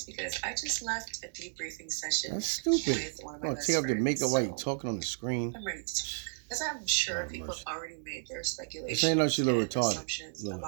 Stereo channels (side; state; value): left; silent; 56 dB below the other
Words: because I just left a debriefing session. That's stupid. With one of my best take off friends. the makeup while you're So talking on the screen. I'm ready to talk. As I'm sure people have already made their speculations ain't no she's a little and retarded. assumptions